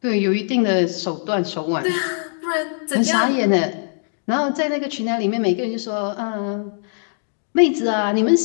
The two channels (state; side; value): silent; right; digital silence